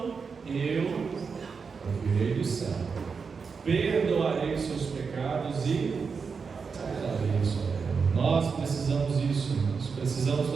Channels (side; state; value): left; quieter; 5.4 dB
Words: eu ouvirei do céu, perdoarei os seus pecados e sararei a sua terra. Nós precisamos disso, nós precisamos